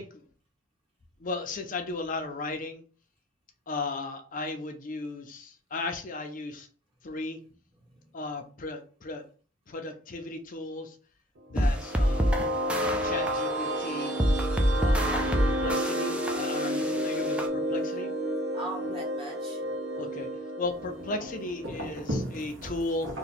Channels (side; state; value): both; normal; correlation 0.50